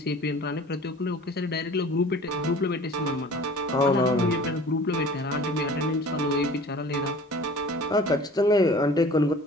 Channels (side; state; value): both; normal; correlation 0.45